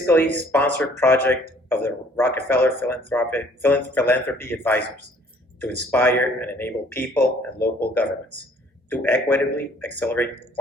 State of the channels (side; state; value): both; normal; correlation 0.58